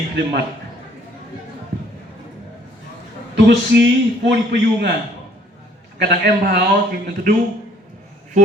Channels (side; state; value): both; normal; correlation 0.60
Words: klimat Tugusi pun payunga kadang em hao thì mình du